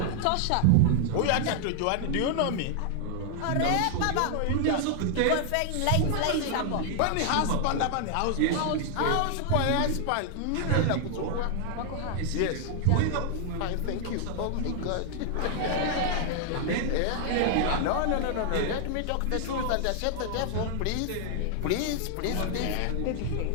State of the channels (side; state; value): both; different; correlation 0.00